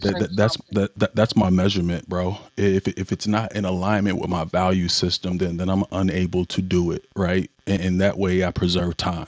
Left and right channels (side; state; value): both; identical; correlation 1.00